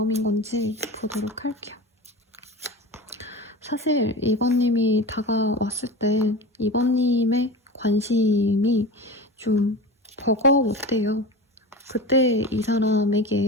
건지 보도록 할게요. 사실 이번님이 다가왔을 때 이번님의 관심이 좀 버거웠대요. 그때 이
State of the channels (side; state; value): both; normal; correlation 0.30